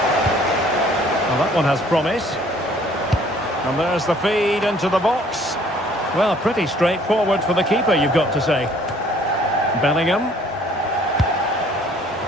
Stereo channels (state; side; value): normal; both; correlation 0.58